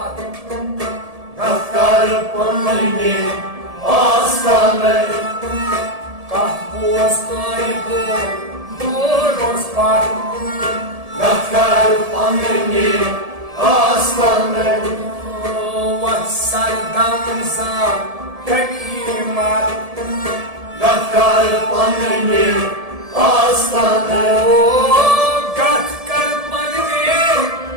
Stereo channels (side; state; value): left; late; 1.7 ms